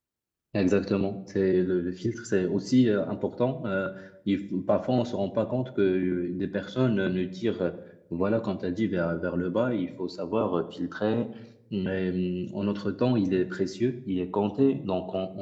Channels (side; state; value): both; identical; correlation 1.00